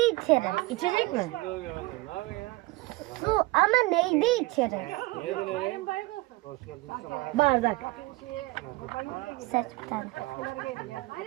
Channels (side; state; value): left; quieter; 21.3 dB